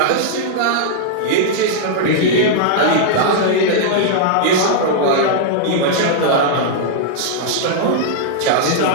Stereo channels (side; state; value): both; different; correlation -0.01